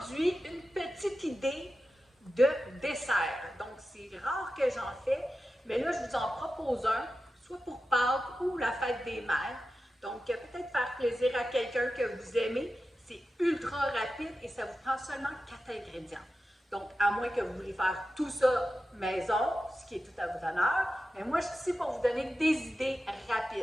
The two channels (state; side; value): normal; both; correlation 0.92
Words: une petite idée de dessert. Donc c'est rare que j'en fais, mais là je vous en propose un, soit pour Pâques ou la fête des mères. Donc peut-être faire plaisir à quelqu'un que vous aimez. C'est ultra rapide et ça vous prend seulement 4 ingrédients. Donc à moins que vous voulez faire tout ça maison, ce qui est tout à votre honneur, mais moi je suis ici pour vous donner des idées